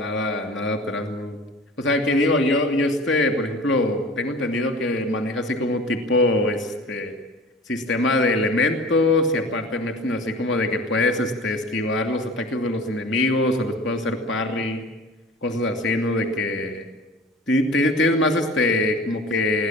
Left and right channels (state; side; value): normal; both; correlation 0.41